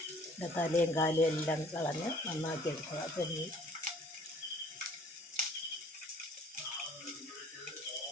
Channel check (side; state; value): both; normal; correlation 0.55